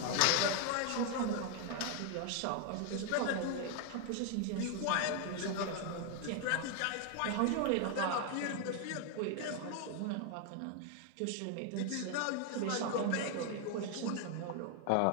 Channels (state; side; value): different; both; correlation 0.00